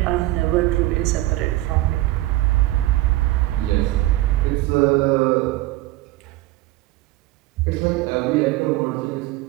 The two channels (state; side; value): quieter; left; 17.1 dB